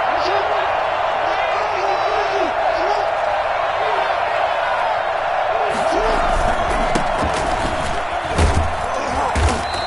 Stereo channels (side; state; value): both; identical; correlation 1.00